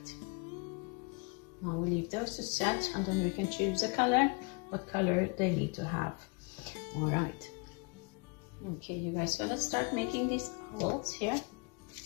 Now we leave those to set, and then we can choose a color, what color they need to have. All right. Okay, you guys, so let's start making these owls here.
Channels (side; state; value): right; quieter; 32.3 dB